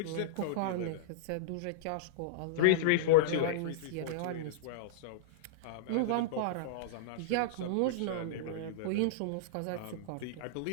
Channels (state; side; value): different; both; correlation -0.02